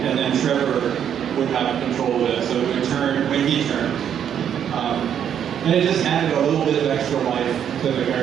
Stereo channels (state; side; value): quieter; left; 9.0 dB